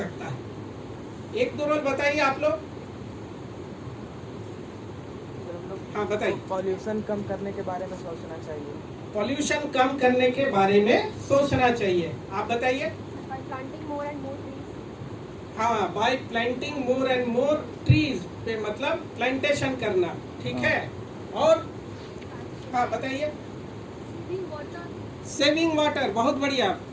है? एक दो रोल बताइए आप लोग। हाँ बताइए। पॉल्यूशन कम करने के बारे में सोचना चाहिए। पॉल्यूशन कम करने के बारे में सोचना चाहिए। आप बताइए। planting more and more trees. हाँ, bye planting more and more trees पे मतलब प्लांटेशन करना, ठीक है। और हाँ बताइए। Saving water. सेविंग वाटर, बहुत बढ़िया।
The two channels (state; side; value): identical; both; correlation 1.00